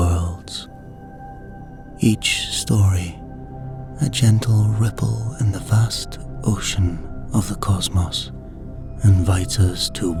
Each story, a gentle ripple in the vast ocean of the cosmos, invites us to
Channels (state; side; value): identical; both; correlation 1.00